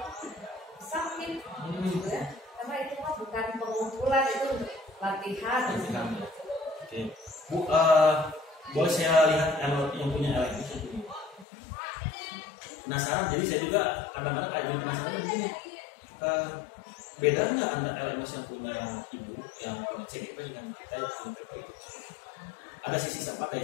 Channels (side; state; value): right; drops out; at 11.5 s